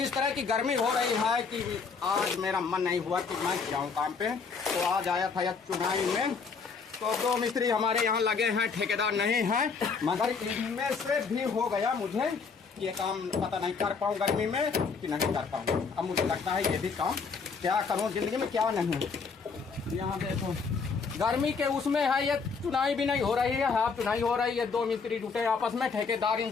तरह की गर्मी हो रही है कि आज मेरा मन नहीं हुआ कि मैं जाऊं काम पे। तो आज आया था यह चुनाई में, तो 2 मिस्त्री हमारे यहाँ लगे हैं, ठेकेदार नहीं है, मगर इनमें से भी हो गया मुझे ये काम, पता नहीं कर पाऊँ गर्मी में कि नहीं कर पाऊँ। अब मुझे लगता है ये भी काम क्या करूँ जिंदगी में, क्या नहीं। यहाँ देखो गर्मी के उसमें है, ये चुनाई भी नहीं हो रही है, हाफ चुनाई हो रही है। 2 मिस्त्री जुटे आपस में, ठेकेदार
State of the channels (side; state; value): right; quieter; 5.2 dB